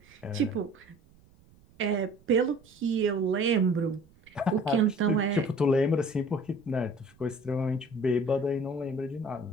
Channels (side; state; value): right; noise; rumble, 29 dB below the sound